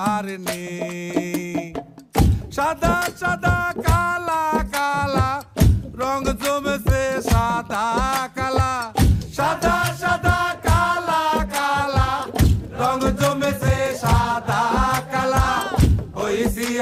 সাদা সাদা কালা কালা রং জমেছে সাদা কালা, সাদা সাদা কালা কালা রং জমেছে সাদা কালা। হইছি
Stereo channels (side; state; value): both; identical; correlation 1.00